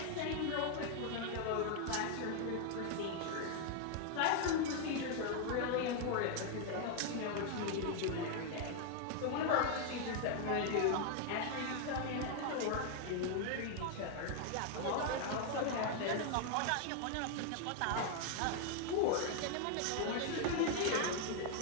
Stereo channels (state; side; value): different; both; correlation 0.00